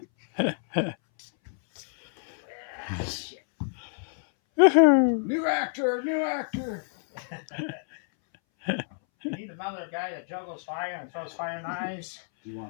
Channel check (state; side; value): silent; right; 59 dB below the other